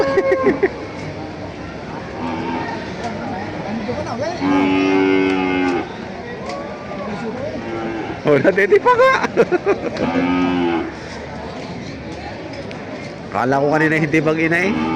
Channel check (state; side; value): identical; both; correlation 1.00